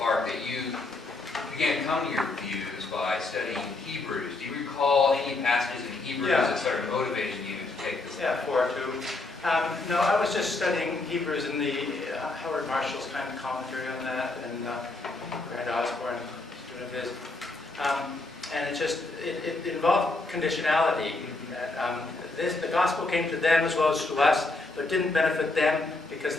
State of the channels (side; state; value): right; quieter; 3.1 dB